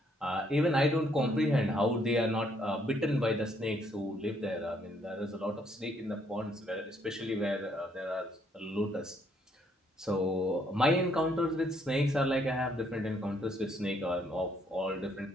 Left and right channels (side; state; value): both; normal; correlation 0.69